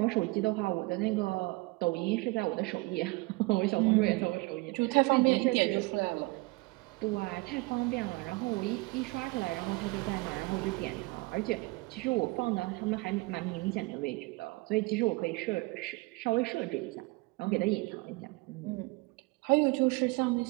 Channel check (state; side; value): quieter; left; 24.2 dB